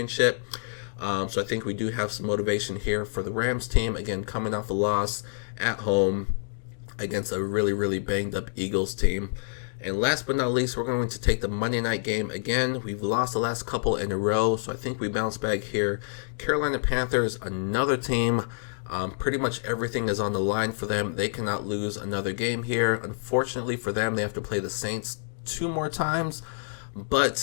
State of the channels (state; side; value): silent; right; digital silence